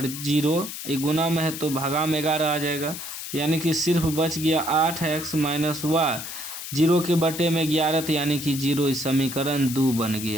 0, ये गुना में है तो भागा में 11 आ जाएगा, यानी कि सिर्फ बच गया 8x माइनस वाई, 0 के बटे में 11, तो यानी कि 0, इस समीकरण 2 बन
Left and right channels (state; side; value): noise; left; hiss, 8 dB below the sound